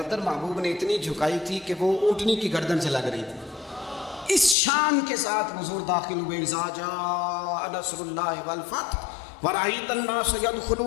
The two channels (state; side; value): drops out; right; at 4.5 s